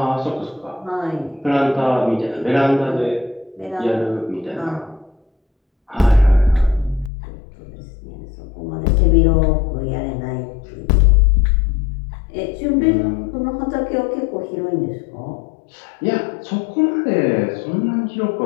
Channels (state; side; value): drops out; right; at 7.1 s